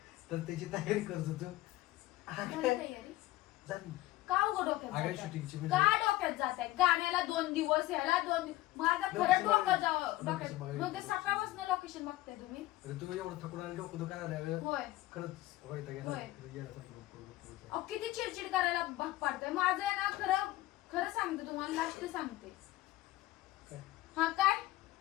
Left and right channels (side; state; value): right; quieter; 17.1 dB